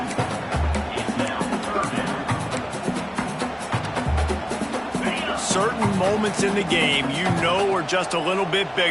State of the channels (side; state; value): both; identical; correlation 1.00